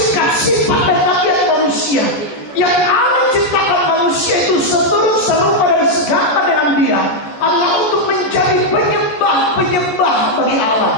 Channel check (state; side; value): late; right; 14 ms